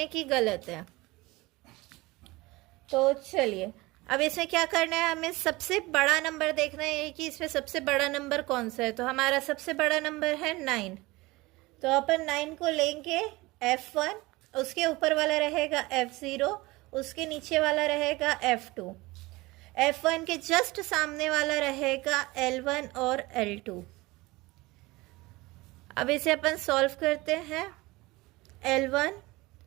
कि गलत है। तो चलिए अब इसमें क्या करना है? हमें सबसे बड़ा नंबर देखना है कि इसमें सबसे बड़ा नंबर कौन सा है। तो हमारा सबसे बड़ा नंबर है 9। तो अपन 9 को लेंगे F1, उसके ऊपर वाला रहेगा F0, उसके नीचे वाला रहेगा F2, F1 के जस्ट सामने वाला रहेगा L1 और L2। अब इसे अपन सॉल्व करते हैं। L1,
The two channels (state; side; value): quieter; left; 21.5 dB